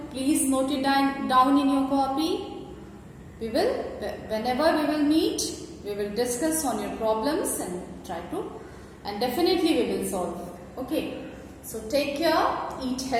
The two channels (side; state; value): both; identical; correlation 1.00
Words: please note it down in your copy. Whenever we will meet, we will discuss on your problems and definitely we will solve. Okay, so take care, eat